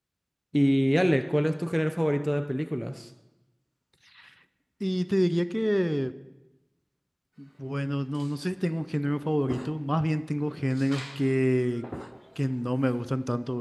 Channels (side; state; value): both; identical; correlation 1.00